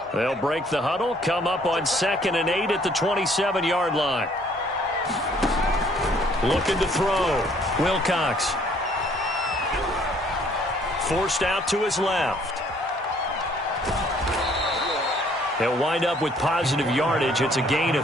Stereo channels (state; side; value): normal; both; correlation 0.61